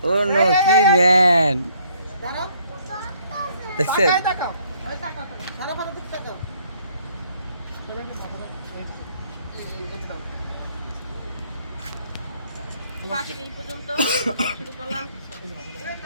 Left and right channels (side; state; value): both; inverted; correlation -0.64